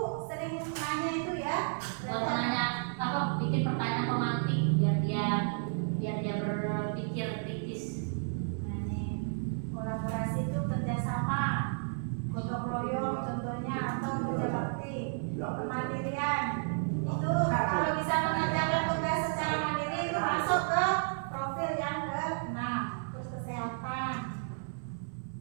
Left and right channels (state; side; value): silent; left; 56 dB below the other